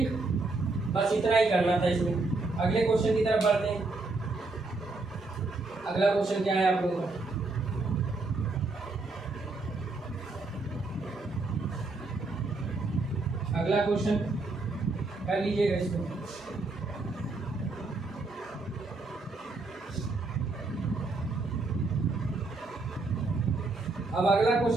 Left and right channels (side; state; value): left; quieter; 3.4 dB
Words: बस इतना ही करना था इसमें। अगले क्वेश्चन की तरफ बढ़ते हैं। अगला क्वेश्चन क्या है आप लोगों का, अगला क्वेश्चन कर लीजिएगा इसको। अब अगला